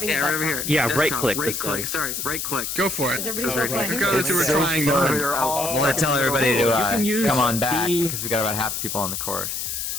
Yeah, the right best over time. here. Yeah, Desktop, right-click, Right this click. click. Sorry, right click. Go for it. Is everybody still playing? Because we were trying to. I'm gonna tell everybody to come on back because we got about half the people on the course.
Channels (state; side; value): noise; left; hiss, 4 dB below the sound